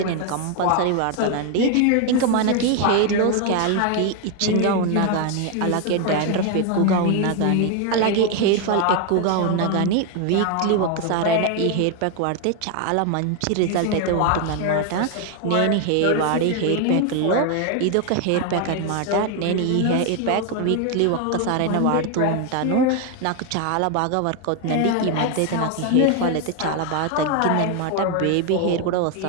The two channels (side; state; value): both; different; correlation 0.01